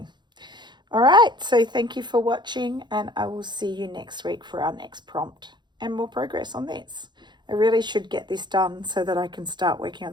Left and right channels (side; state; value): left; late; 0.21 ms